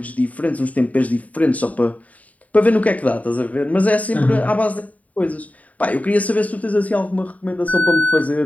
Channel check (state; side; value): late; right; 0.070 ms